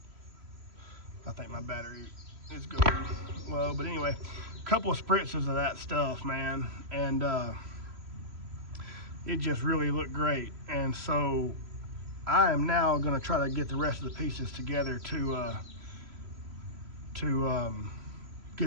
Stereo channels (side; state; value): left; late; 3.1 ms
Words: think my battery is going low, but anyway, a couple of spritzes of that stuff, man, and it just really looked great. And so I am now going to try to get the rest of the pieces together to